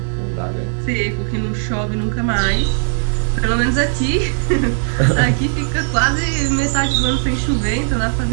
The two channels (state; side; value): silent; left; digital silence